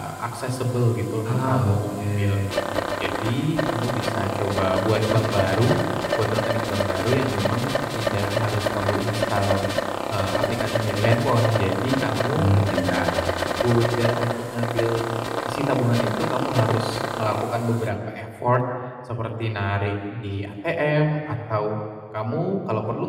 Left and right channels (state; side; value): identical; both; correlation 1.00